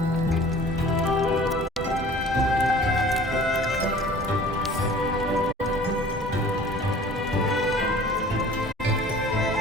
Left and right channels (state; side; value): normal; both; correlation 0.46